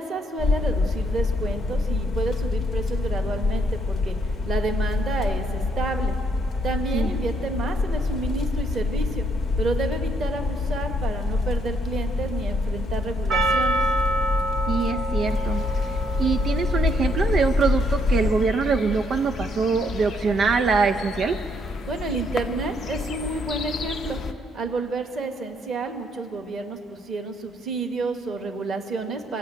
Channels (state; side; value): normal; both; correlation 0.71